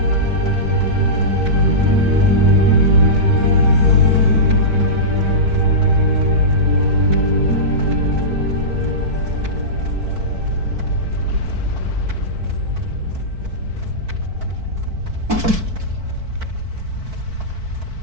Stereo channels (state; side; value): late; left; 4.5 ms